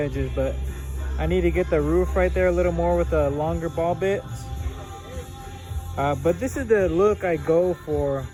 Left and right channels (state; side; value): identical; both; correlation 1.00